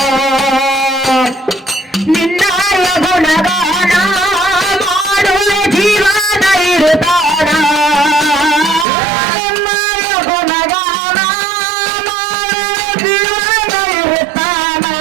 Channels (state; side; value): drops out; left; at 8.8 s